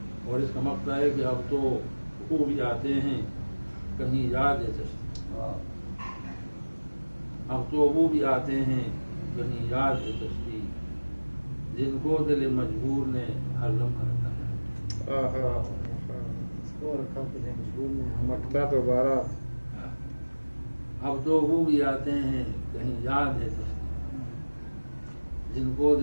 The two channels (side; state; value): both; inverted; correlation -1.00